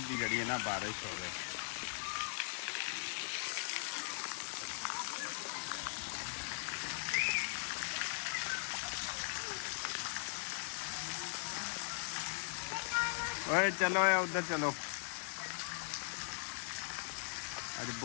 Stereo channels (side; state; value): right; silent; digital silence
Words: की जी ना बारिश हो। ओए चलो उधर चलो। अज